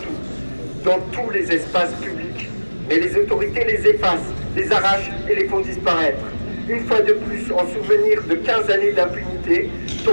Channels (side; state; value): both; inverted; correlation -1.00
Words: dans tous les espaces publics, mais les autorités les effacent, les arrachent et les font disparaître. Une fois de plus, en souvenir de 15 années d'impunité,